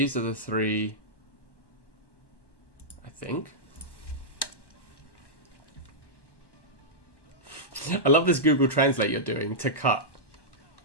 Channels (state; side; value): late; right; 1.1 ms